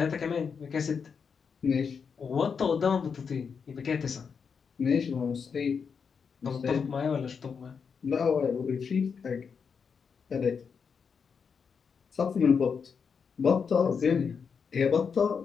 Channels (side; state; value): right; quieter; 6.1 dB